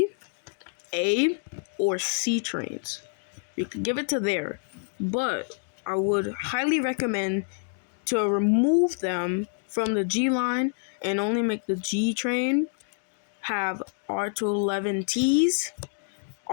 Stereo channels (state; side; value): silent; right; 57 dB below the other